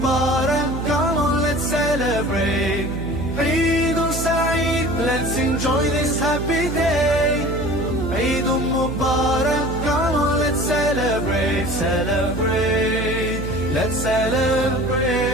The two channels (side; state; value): right; noise; hum, 5 dB below the sound